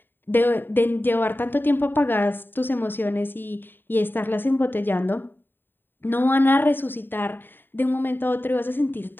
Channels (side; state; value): right; late; 0.095 ms